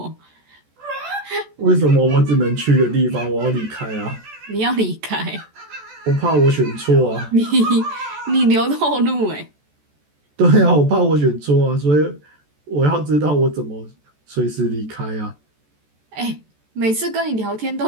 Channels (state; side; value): late; left; 14 ms